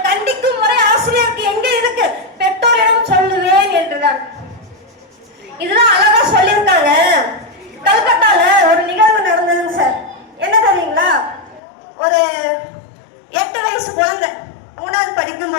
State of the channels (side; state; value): right; drops out; at 11.6 s